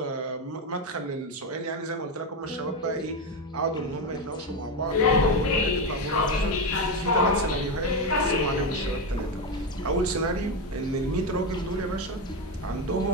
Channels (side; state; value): both; normal; correlation 0.12